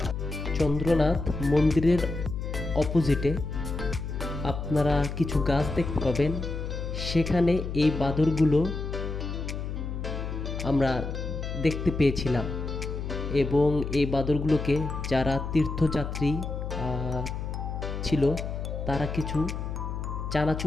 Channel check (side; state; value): left; noise; hum, 5 dB below the sound